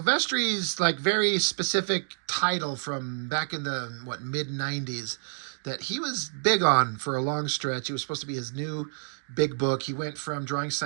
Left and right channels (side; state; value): left; silent; digital silence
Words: like very specific title from back in the mid '90s that he was big on for a long stretch. It was supposed to be his new big book. He went from drawing